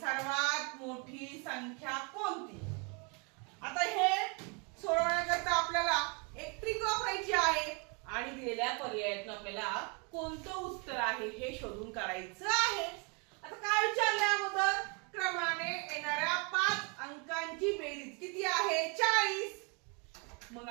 मोठी संख्या कोणती? आता हे सोडवण्याकरता आपल्याला एक ट्रिक वापरायची आहे आणि दिलेल्या पर्यायातून आपल्याला कोणतं उत्तर आहे हे शोधून काढायचं आहे. आता काय विचारले अगोदर, क्रमाने येणाऱ्या 5 अंकांची बेरीज किती आहे? 40. मग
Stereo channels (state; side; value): quieter; left; 32.2 dB